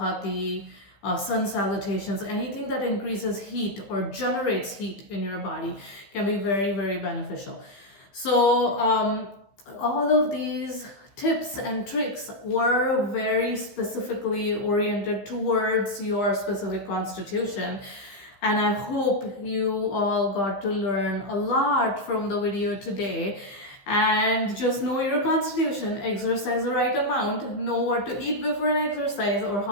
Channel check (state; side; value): late; right; 15 ms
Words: sun salutations. Anything that increases heat or generates heat in your body can be very, very beneficial. So all of these tips and tricks were very specifically oriented towards your specific constitution. And I hope you all got to learn a lot from the video today. And just know your constitution, exercise the right amount, know what to eat before an exercise, or